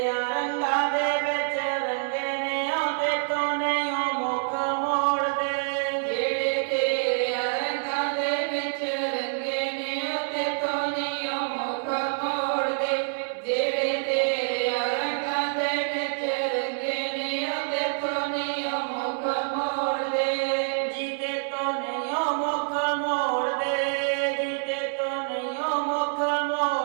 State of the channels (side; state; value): left; silent; 60 dB below the other